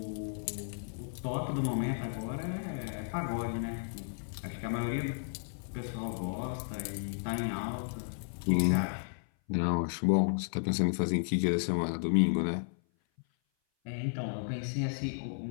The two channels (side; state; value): right; silent; 55 dB below the other